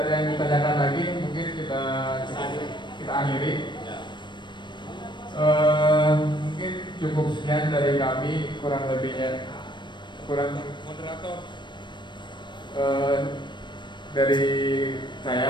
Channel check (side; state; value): right; late; 0.22 ms